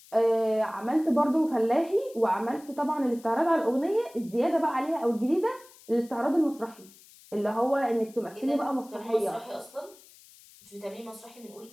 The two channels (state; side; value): noise; left; hiss, 24 dB below the sound